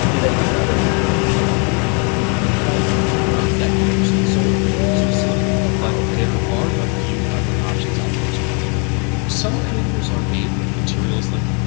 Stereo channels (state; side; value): quieter; right; 36.0 dB